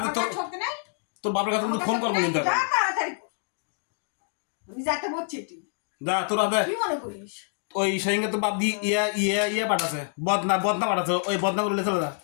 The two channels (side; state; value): right; silent; 60 dB below the other